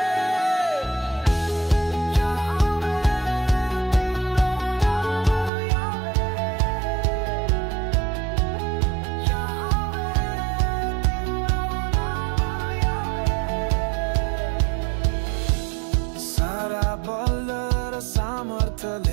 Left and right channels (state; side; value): drops out; left; at 5.5 s